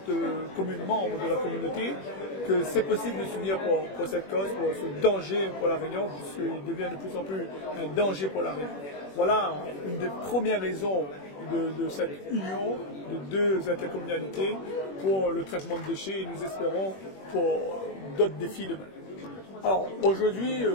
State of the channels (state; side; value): late; right; 21 ms